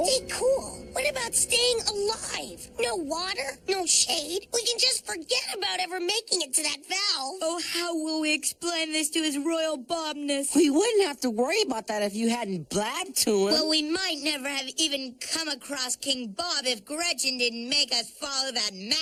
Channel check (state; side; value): identical; both; correlation 1.00